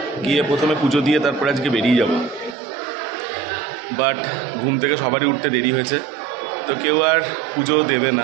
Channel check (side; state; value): left; drops out; at 2.6 s